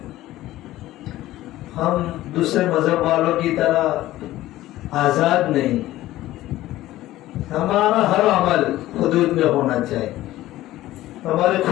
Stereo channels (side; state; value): right; quieter; 15.6 dB